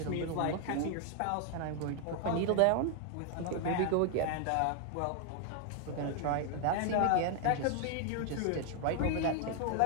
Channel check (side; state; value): both; different; correlation 0.00